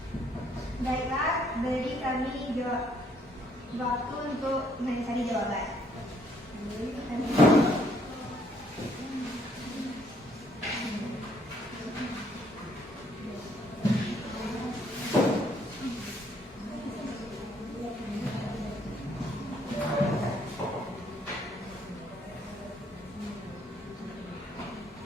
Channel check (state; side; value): normal; both; correlation 0.67